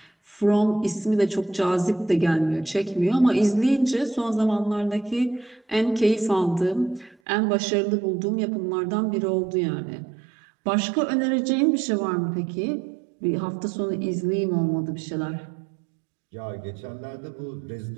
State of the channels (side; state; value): left; drops out; at 7.2 s